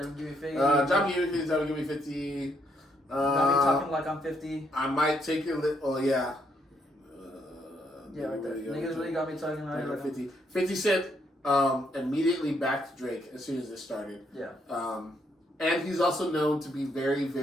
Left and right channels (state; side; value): normal; both; correlation 0.73